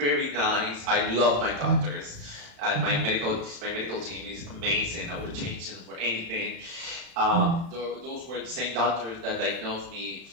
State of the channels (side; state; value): left; late; 35 ms